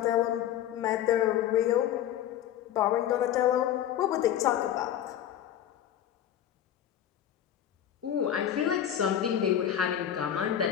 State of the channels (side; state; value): right; quieter; 10.8 dB